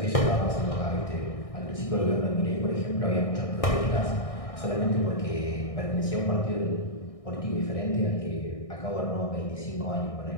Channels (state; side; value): late; right; 1.6 ms